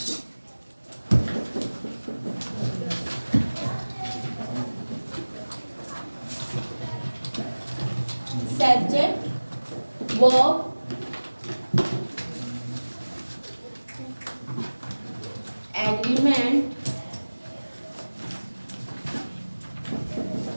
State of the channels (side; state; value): both; inverted; correlation -1.00